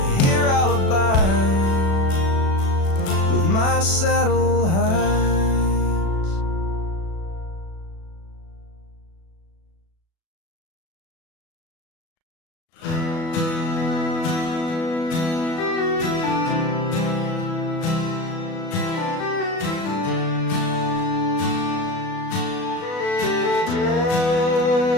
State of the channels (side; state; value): right; late; 36 ms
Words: Here I'll abide with my saddle hides.